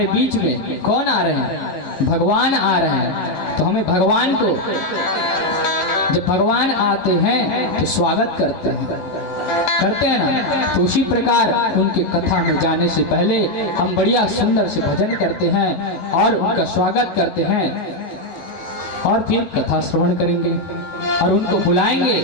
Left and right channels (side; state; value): right; late; 11 ms